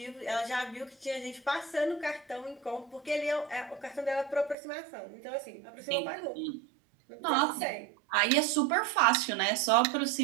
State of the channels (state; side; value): drops out; left; at 4.5 s